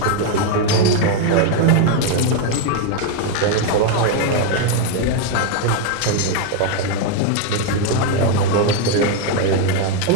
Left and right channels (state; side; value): different; both; correlation 0.01